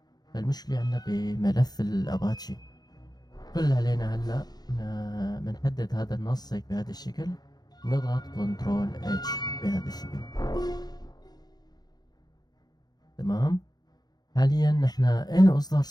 فالمشكلة عنا بملف الأباتشي. كل اللي علينا هلا بنحدد هذا النص هيك بهذا الشكل، نضغط كنترول اتش بهذا الشكل. تمام. حاليا نحن اين اصدار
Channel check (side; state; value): right; late; 0.19 ms